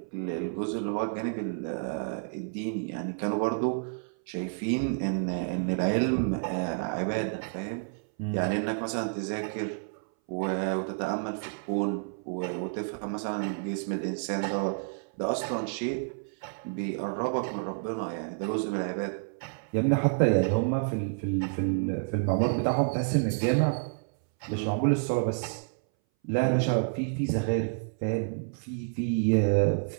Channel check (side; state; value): left; silent; 58 dB below the other